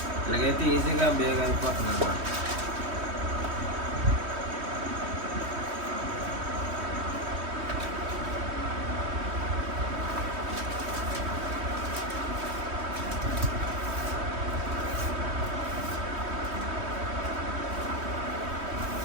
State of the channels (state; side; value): late; left; 3.1 ms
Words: ఇలాగైతే ఈజీగా బేగ్ అయిపోతుంది అన్నమాట.